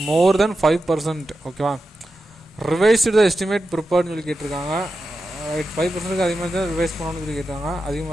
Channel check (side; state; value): both; normal; correlation 0.90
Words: more than 5%. ஓகேவா. ரிவைஸ்டு எஸ்டிமேட் ப்ரிப்பேர்னு சொல்லி கேட்டிருக்காங்க. 5% அதிகமாக இருந்தால் ரிவைஸ் பண்ணணும்னு சொல்லி கேட்டாங்க.